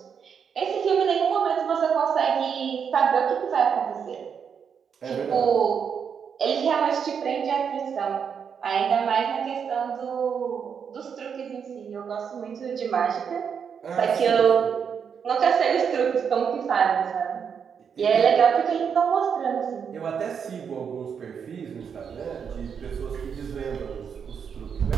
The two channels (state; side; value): quieter; left; 7.0 dB